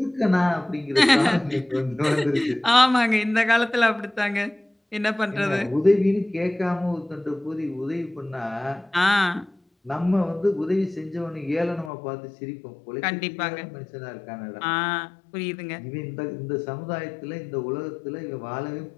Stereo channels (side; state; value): right; drops out; at 11.9 s